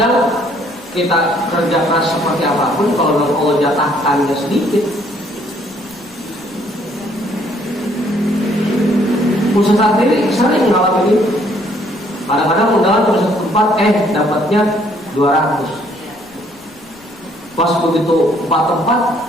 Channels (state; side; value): noise; left; rumble, 28 dB below the sound